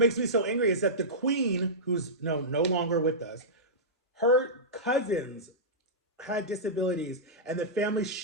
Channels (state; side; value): normal; both; correlation -0.15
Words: me so angry is that the queen, who's no longer with us, her cousins had disabilities and the family